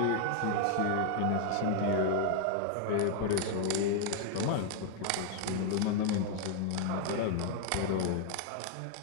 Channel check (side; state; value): both; different; correlation 0.00